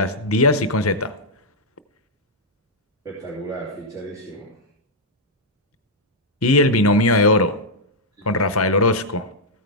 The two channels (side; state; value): both; normal; correlation -0.04